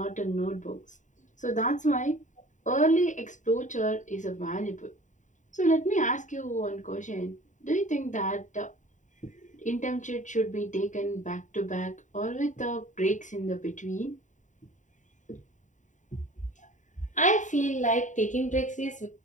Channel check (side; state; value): right; late; 0.36 ms